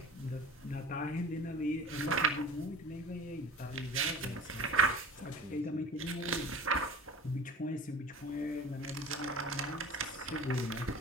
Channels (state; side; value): normal; both; correlation 0.39